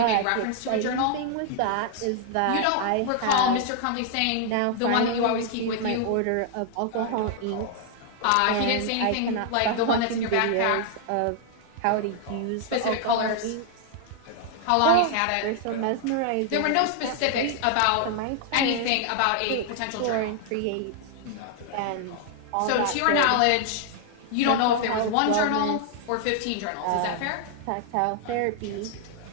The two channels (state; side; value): different; both; correlation 0.00